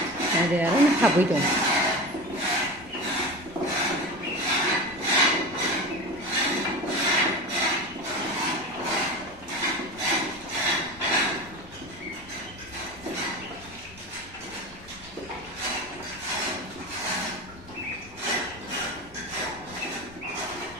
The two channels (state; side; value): normal; both; correlation 0.29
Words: để nó học với chồng